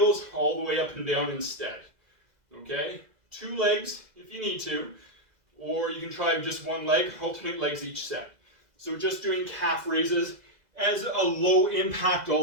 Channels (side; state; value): left; late; 2.0 ms